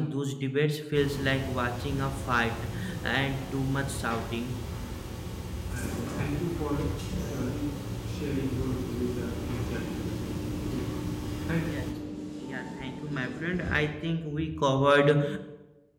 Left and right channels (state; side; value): identical; both; correlation 1.00